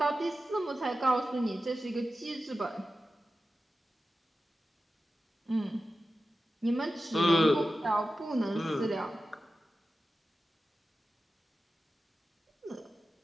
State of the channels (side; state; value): both; normal; correlation 0.93